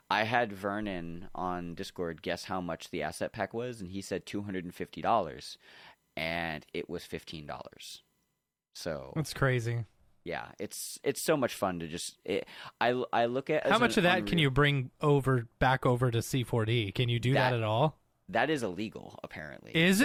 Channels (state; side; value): identical; both; correlation 1.00